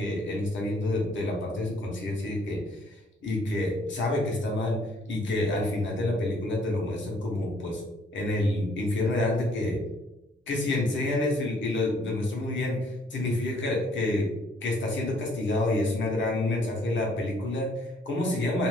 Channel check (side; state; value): both; normal; correlation 0.63